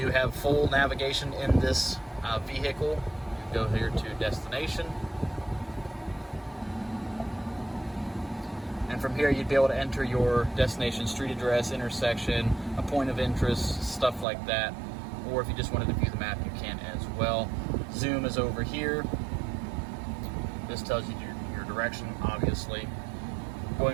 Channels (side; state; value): left; drops out; at 14.2 s